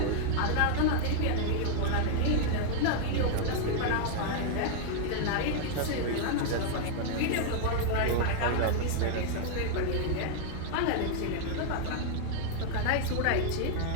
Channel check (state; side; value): different; both; correlation 0.00